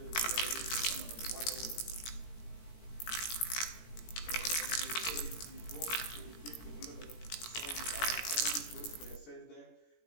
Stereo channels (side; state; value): right; late; 17 ms